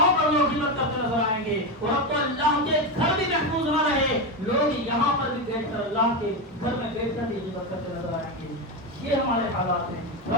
پر لوگ غیبت کرتے نظر آئیں گے، اور اب تو اللہ کے گھر بھی محفوظ نہ رہے، لوگ یہاں پر بھی بیٹھ کر اللہ کے گھر میں بیٹھ کر بھی غیبت کرتے نظر آئیں گے۔ یہ ہمارے حالات ہیں۔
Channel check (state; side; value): normal; both; correlation 0.13